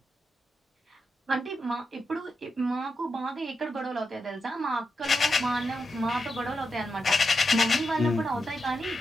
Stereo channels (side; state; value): both; normal; correlation 0.86